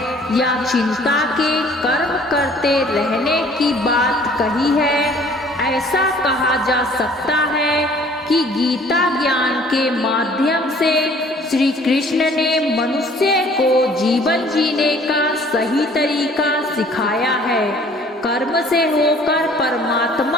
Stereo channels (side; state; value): both; normal; correlation 0.55